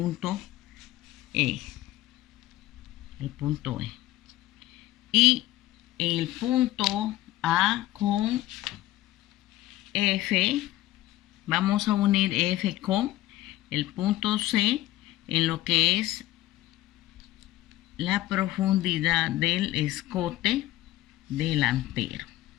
E, y el punto A con F, vamos a unir F con el punto C en lo que es la profundidad del escote delantero.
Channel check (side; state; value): right; quieter; 15.9 dB